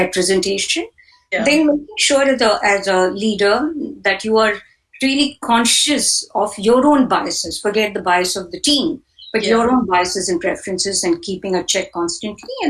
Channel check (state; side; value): identical; both; correlation 1.00